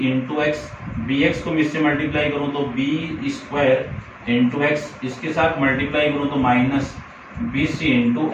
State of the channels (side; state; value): both; identical; correlation 1.00